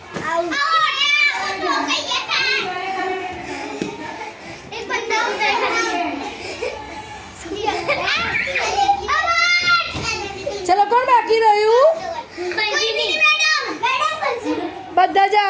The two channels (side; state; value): both; identical; correlation 1.00